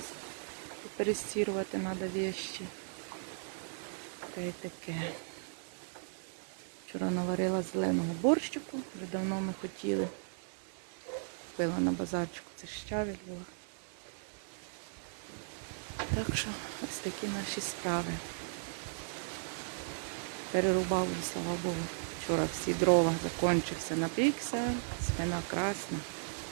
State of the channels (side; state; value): left; silent; 54 dB below the other